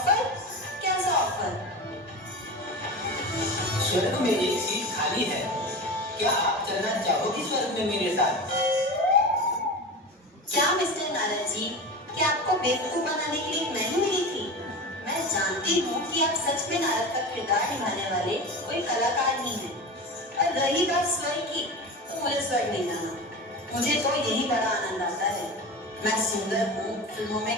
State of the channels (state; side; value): normal; both; correlation 0.27